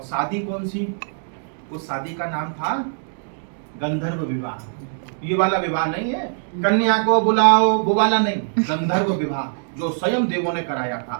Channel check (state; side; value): silent; left; digital silence